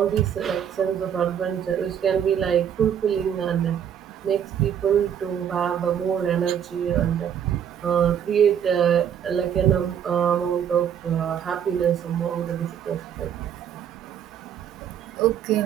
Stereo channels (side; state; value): left; quieter; 8.9 dB